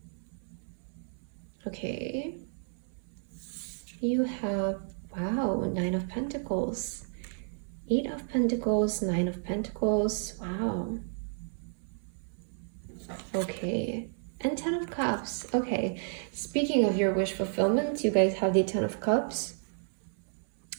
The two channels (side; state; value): left; silent; 57 dB below the other